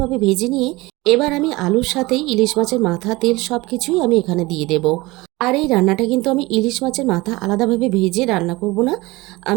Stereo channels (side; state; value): left; quieter; 21.6 dB